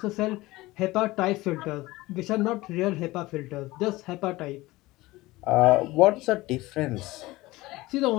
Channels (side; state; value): right; quieter; 19.6 dB